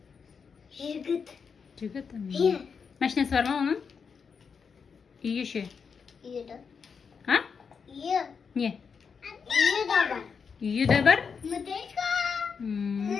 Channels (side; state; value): right; quieter; 6.0 dB